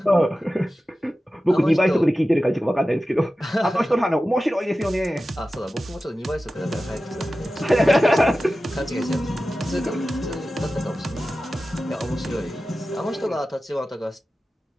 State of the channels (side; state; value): both; normal; correlation 0.94